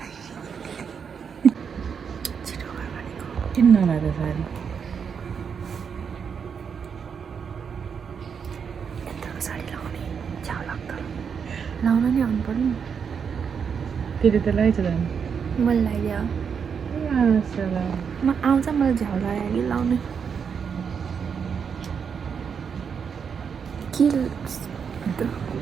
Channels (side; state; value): left; quieter; 6.7 dB